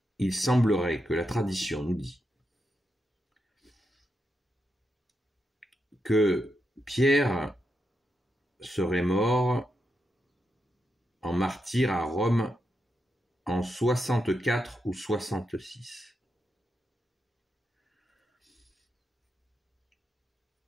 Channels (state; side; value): normal; both; correlation 0.84